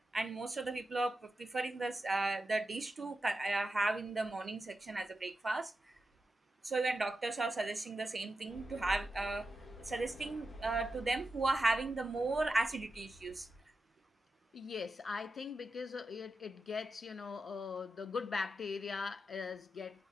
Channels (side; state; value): both; normal; correlation 0.90